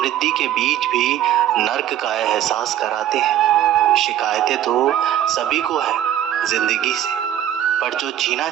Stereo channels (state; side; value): quieter; left; 11.6 dB